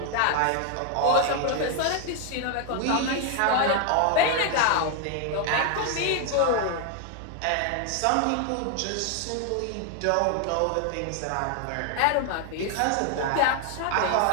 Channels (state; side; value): different; both; correlation 0.00